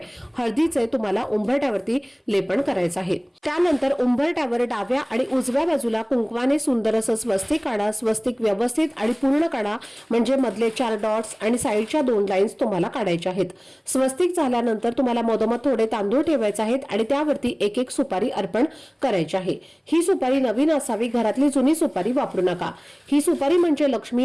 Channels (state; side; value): identical; both; correlation 1.00